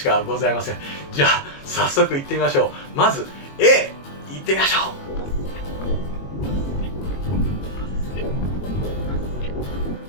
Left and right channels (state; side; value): late; right; 22 ms